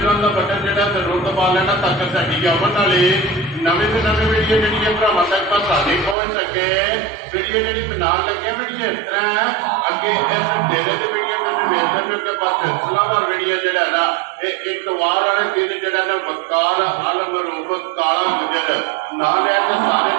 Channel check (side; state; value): left; drops out; at 6.2 s